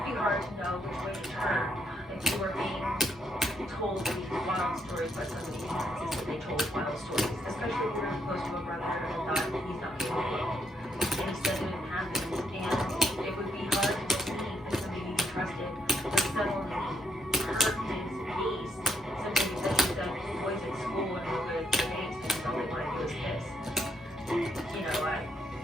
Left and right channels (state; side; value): normal; both; correlation 0.76